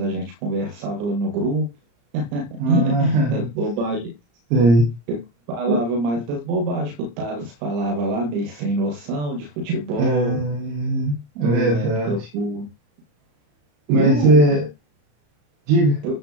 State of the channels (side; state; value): left; late; 34 ms